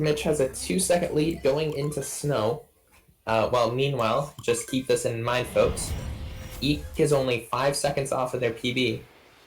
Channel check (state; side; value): identical; both; correlation 1.00